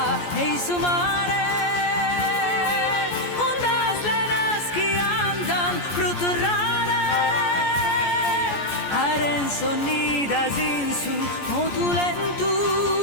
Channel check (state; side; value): late; right; 14 ms